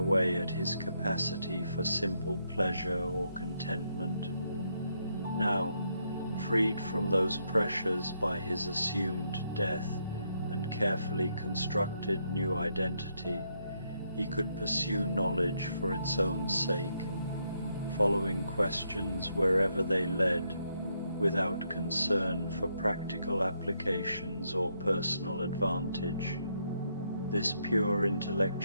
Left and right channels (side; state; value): both; inverted; correlation -0.77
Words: at his capacity for simple pleasure or contentment. Now, freed from those pressures by his assumed death and carefully constructed new identity, he could pursue knowledge for its own sake, following questions wherever they led, without concern for practical applications or personal advantage. This pure